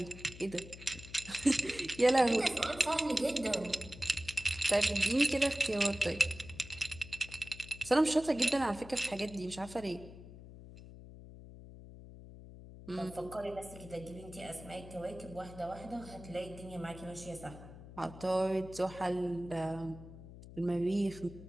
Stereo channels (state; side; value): noise; left; hum, 16 dB below the sound